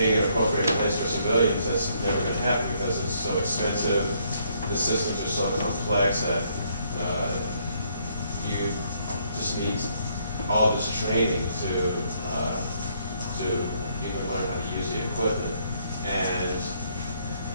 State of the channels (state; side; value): inverted; both; correlation -0.69